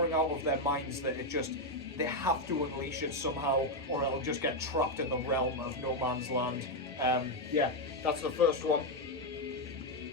out of their minds that they have to unleash it somehow, or it'll just get trapped in the realm of no man's land. Yeah, that's the first one.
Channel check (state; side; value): normal; both; correlation 0.04